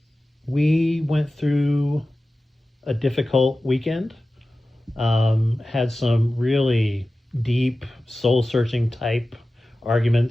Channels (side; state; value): both; normal; correlation 0.95